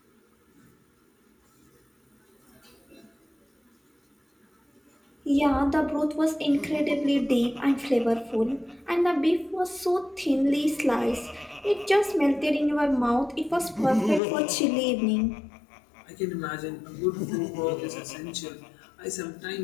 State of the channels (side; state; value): right; drops out; at 14.2 s